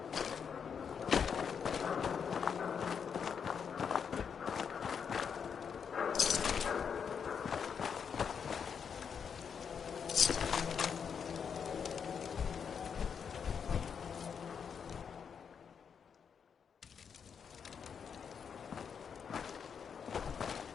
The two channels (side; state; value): right; quieter; 6.9 dB